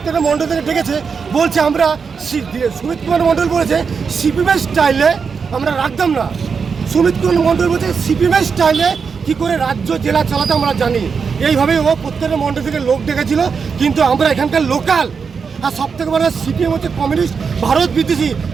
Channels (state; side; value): quieter; left; 5.7 dB